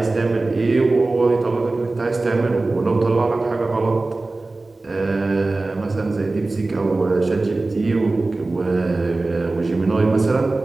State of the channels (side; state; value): left; quieter; 3.2 dB